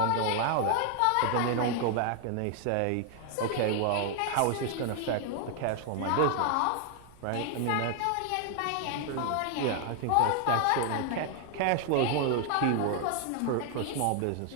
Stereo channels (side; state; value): both; different; correlation 0.00